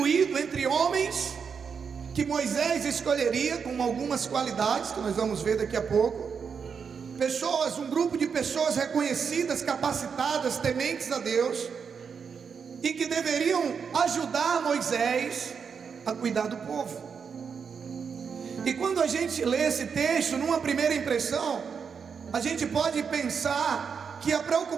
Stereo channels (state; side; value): quieter; left; 6.3 dB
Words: entre homens que Moisés escolheria com algumas qualidades que nós vamos ver daqui a pouco. Pessoas, um grupo de pessoas reconhecidas, capacitadas, tementes a Deus, e que deveriam ajudar Moisés a cuidar do povo. E quando a gente lê esse texto, numa primeira impressão, a gente pode pensar que a